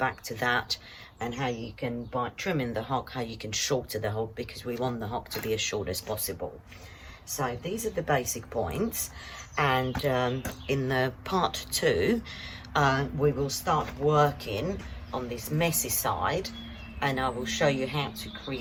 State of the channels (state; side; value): identical; both; correlation 1.00